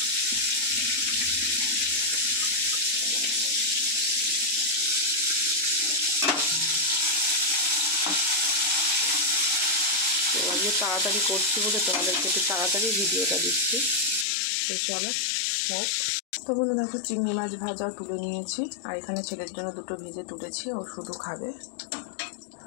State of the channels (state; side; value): drops out; right; at 14.2 s